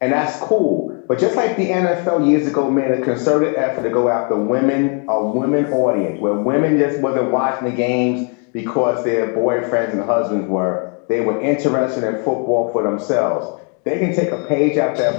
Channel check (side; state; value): right; quieter; 39.2 dB